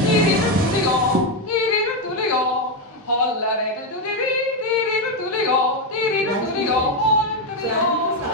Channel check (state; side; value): normal; both; correlation 0.06